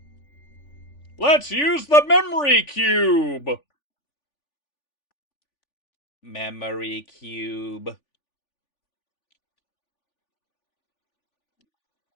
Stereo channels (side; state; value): right; late; 3.4 ms